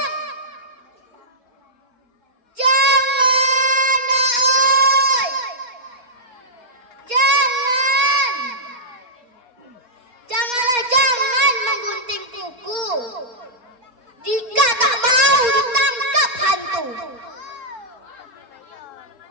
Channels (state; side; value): late; left; 4.1 ms